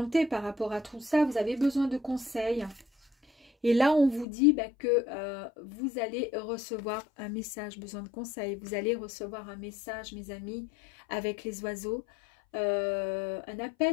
par rapport à tout ça, vous avez besoin de conseils. Et là, on vous dit que vous allez recevoir un message, besoin de conseils. Vous allez recevoir un message, mes amis, avec les oiseaux. Un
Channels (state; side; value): drops out; right; at 4.2 s